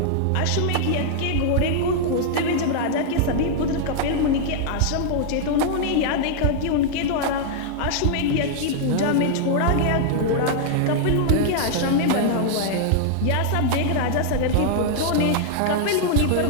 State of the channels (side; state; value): both; different; correlation -0.01